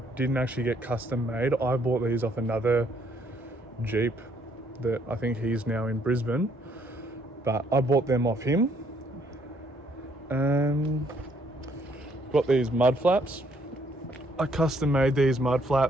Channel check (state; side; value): normal; both; correlation 0.67